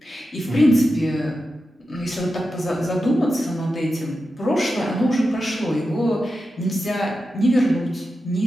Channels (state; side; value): normal; both; correlation 0.90